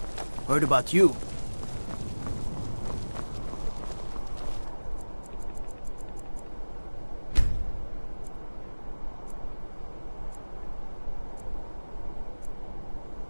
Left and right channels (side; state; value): both; inverted; correlation -1.00